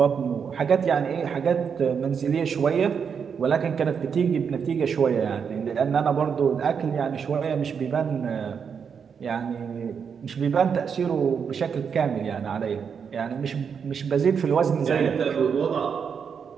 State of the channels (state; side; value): quieter; left; 6.7 dB